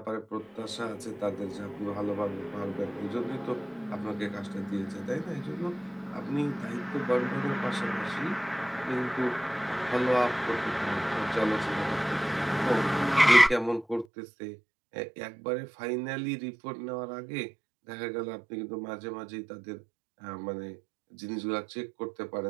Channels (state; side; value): drops out; left; at 14.1 s